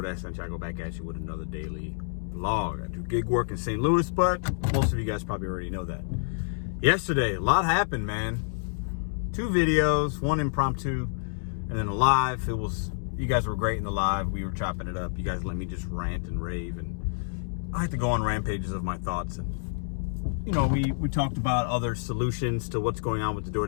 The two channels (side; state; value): right; silent; digital silence